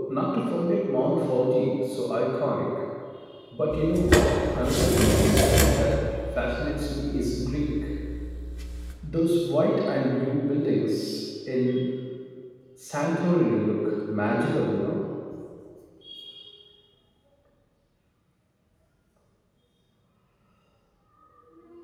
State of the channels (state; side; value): identical; both; correlation 1.00